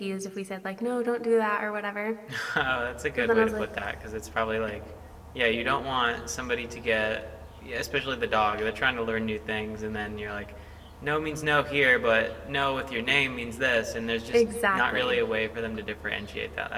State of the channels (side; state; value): both; identical; correlation 1.00